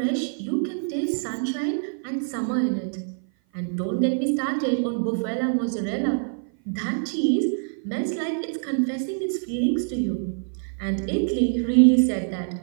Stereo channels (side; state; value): left; silent; 56 dB below the other